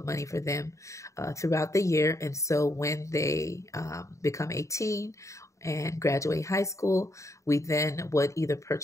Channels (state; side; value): late; right; 0.15 ms